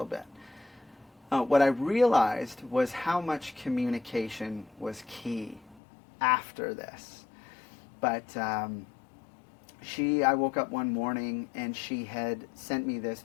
bit. What I realized was how much communication was key after this. But I woke up one morning and she had sent me this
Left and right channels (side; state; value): right; drops out; at 5.8 s